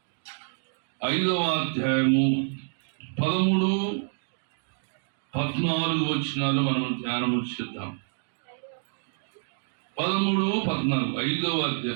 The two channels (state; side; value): silent; left; 59 dB below the other